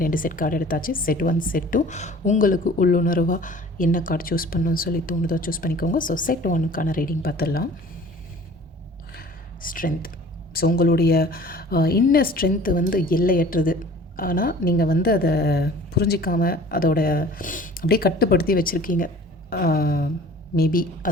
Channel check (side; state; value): both; normal; correlation 0.47